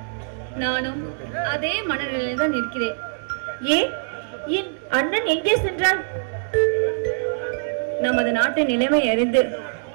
நானும் அதே மனநிலையில் தான் இருக்கிறேன். ஏன் என் அண்ணன் எங்கே சென்றார்? நமது நாட்டின் நிலைமை அறிந்து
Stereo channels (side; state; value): left; silent; digital silence